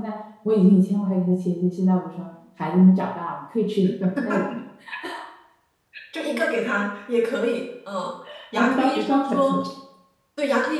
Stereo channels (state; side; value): identical; both; correlation 1.00